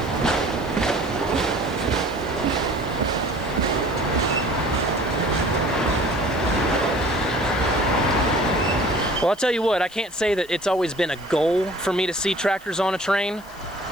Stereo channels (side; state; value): left; noise; hiss, 24 dB below the sound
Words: Well, I'll tell you what, I can't say that it's always been a goal for me to see tractors on a train.